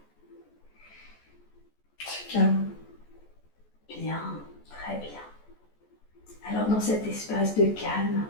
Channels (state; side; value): late; right; 14 ms